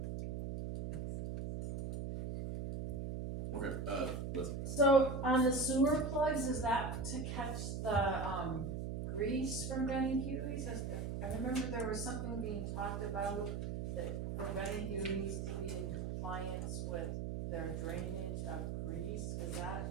Okay, listen, So on the sewer plugs, is that to catch the, grease from Benny Huey's? I remember there was something being talked about that for Benny Huey's to be in compliance with their drainage of grease. Is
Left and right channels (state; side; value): noise; right; hum, 3 dB below the sound